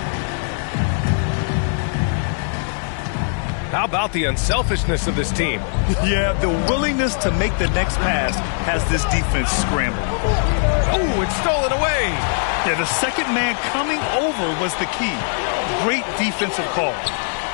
How about the unselfishness of this team? Yeah, the willingness to make the next pass has this defense scrambled. Oh, it's stolen away. Yeah, the second man coming over was the key. Great defensive call.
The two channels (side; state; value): right; silent; digital silence